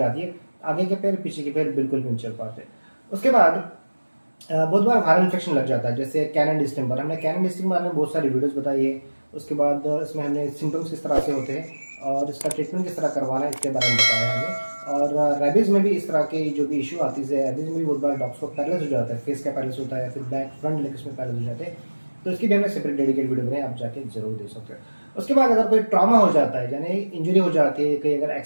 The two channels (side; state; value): both; inverted; correlation -1.00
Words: है, आगे के पैर पीछे के पैर बिल्कुल भी नहीं चल पाते। उसके बाद बहुत बार वायरल इन्फेक्शन लग जाता है, जैसे कैनन डिस्टेंपर। हमने कैनन डिस्टेंपर बारे में बहुत सारी वीडियोस बताई है। उसके बाद इसमें हमने सिम्टम्स किस तरह से होते हैं और इसका ट्रीटमेंट किस तरह करवाना है इसके बारे में बताया हमें। और रेबीज में भी इस तरह की जो भी इशू आती है, रेबीज में भी बहुत बार डॉग्स को पैरलिस हो जाता है, फेस का पैरलिस होता है या फिर बैक फ्रंट लेग्स में पैरलिस हो जाते हैं। तो इसकी भी हमने सेपरेट डेडिकेट वीडियो बनाई, आप जाके जरूर देख सकते हो। उसके बाद अगर कोई ट्रॉमा हो जाता है, यानी इंजरी हो जाती है, कहीं अगर